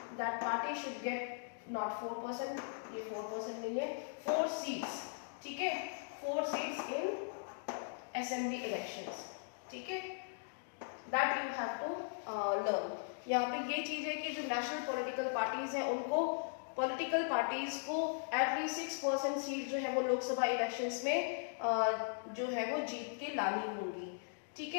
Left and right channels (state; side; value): silent; right; digital silence